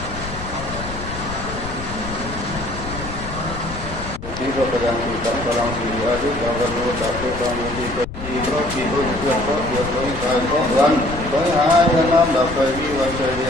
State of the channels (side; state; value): left; noise; rumble, 10 dB below the sound